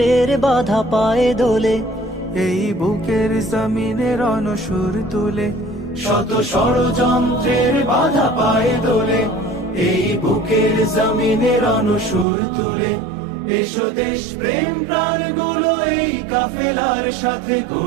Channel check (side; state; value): left; drops out; at 12.2 s